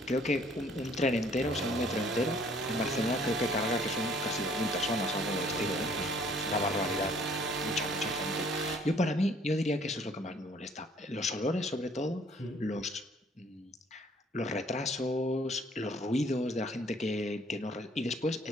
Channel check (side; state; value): both; normal; correlation 0.59